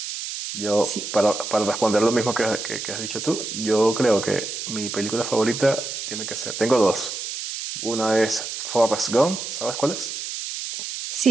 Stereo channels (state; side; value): noise; right; hiss, 6 dB below the sound